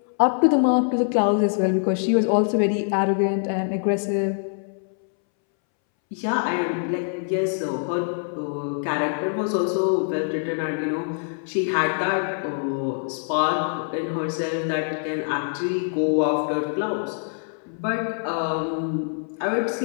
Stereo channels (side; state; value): right; silent; 62 dB below the other